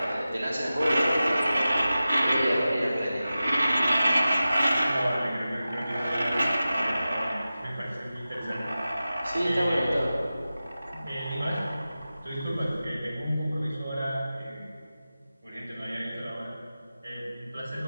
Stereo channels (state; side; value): inverted; both; correlation -0.95